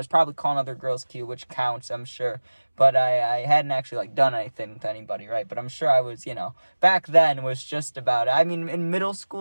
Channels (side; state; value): both; inverted; correlation -1.00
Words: probably calling other girls cute, which counts, I'm sure. But I hadn't actually like done anything with anybody, right? But I'm sure I was, back then was just about it. I mean, in middle